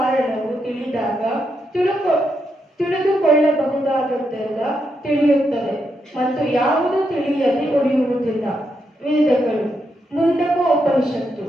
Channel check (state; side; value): normal; both; correlation 0.82